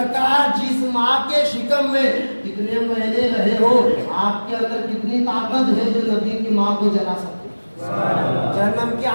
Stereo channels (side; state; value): both; inverted; correlation -1.00